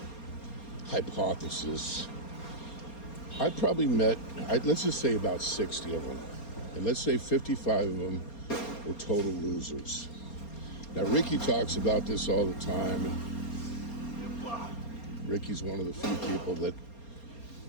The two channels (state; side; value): late; right; 4.3 ms